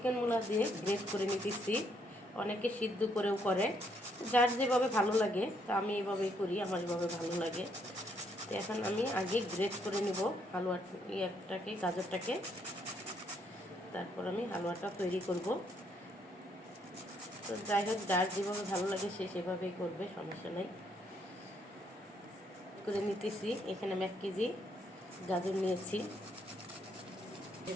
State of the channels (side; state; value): both; normal; correlation 0.72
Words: মুলা দিয়ে গ্রেট করে নিতেছি। অনেকে সিদ্ধ করেও করে, যার যেভাবে ভালো লাগে। তো আমি এইভাবেই করি, আমার এভাবে ভালো লাগে। তো এখন আমি আগে গ্রেট করে নেব হালুয়াটাকে, গাজরটাকে। তারপর আমি হালুয়াটা তৈরি করব। তো যাই হোক, যার যেভাবে ভালো লাগে সে সেভাবেই করবে, সমস্যা নেই। করে নিতেছি। এখানে আমি 1 কেজি গাজর নিয়েছি।